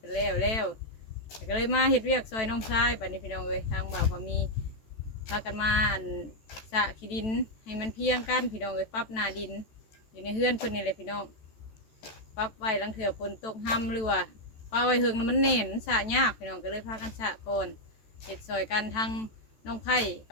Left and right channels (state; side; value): late; right; 14 ms